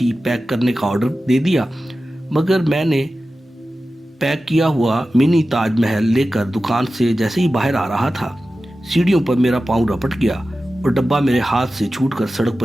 पैक करने का ऑर्डर दे दिया, मगर मैंने पैक किया हुआ मिनी ताजमहल लेकर दुकान से जैसे ही बाहर आ रहा था, सीढ़ियों पर मेरा पाँव रपट गया और डब्बा मेरे हाथ से छूटकर सड़क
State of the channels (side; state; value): both; normal; correlation 0.94